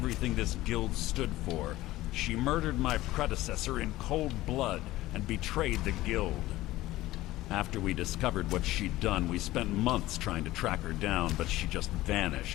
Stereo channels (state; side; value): quieter; right; 16.8 dB